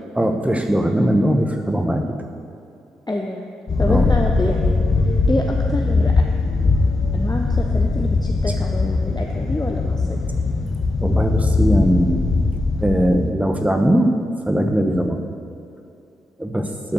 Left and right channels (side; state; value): both; normal; correlation 0.89